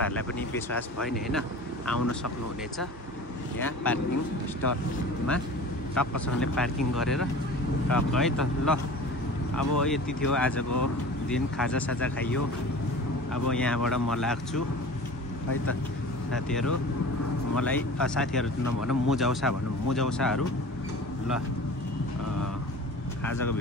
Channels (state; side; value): normal; both; correlation 0.38